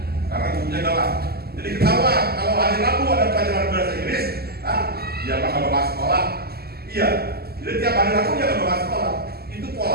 karena gurunya galak. Jadi ketawa kalau hari Rabu ada pelajaran bahasa Inggris, dia bakal bakal sekolah. Iya, jadi tiap hari Rabu dia nggak bakal sekolah. Itu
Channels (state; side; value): late; left; 0.46 ms